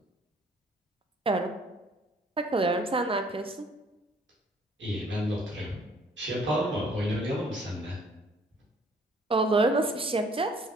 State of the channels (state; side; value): normal; both; correlation 0.59